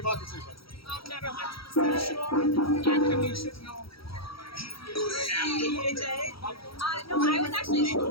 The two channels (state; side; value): late; right; 0.75 ms